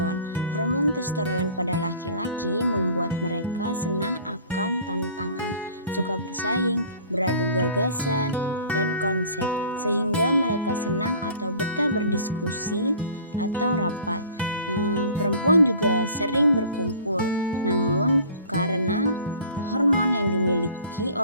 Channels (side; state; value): both; inverted; correlation -0.47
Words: Hormon testosteron pada laki-laki membuat mereka senang akan tantangan, suka bersaing, beradu gagasan, dan konsep, sehingga mereka senang atau betah berdiskusi atau rapat. Perempuan juga sering berkumpul, namun karena hormon yang dimiliki